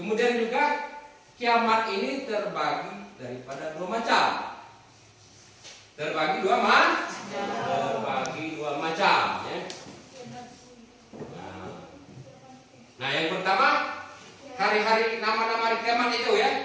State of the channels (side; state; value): both; identical; correlation 1.00